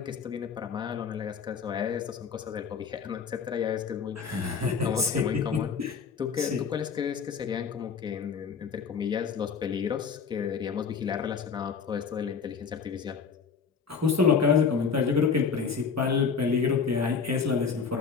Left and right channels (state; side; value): quieter; right; 5.9 dB